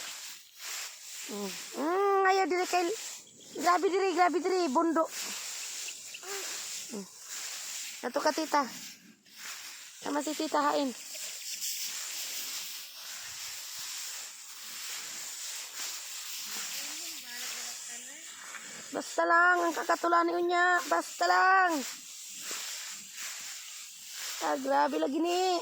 Ayaw diri kay grabe diri bundo. Ato ka tita. Sama si tita hain. Basta lang ang kakatulan niya, basta lang. Grabe lagi ni.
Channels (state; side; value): identical; both; correlation 1.00